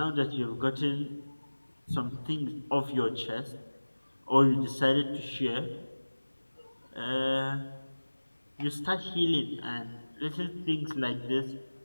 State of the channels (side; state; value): both; inverted; correlation -1.00